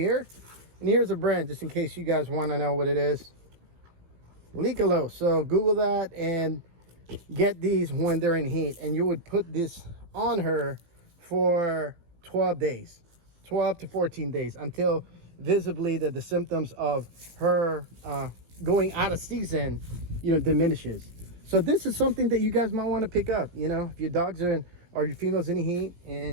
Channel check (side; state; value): left; late; 18 ms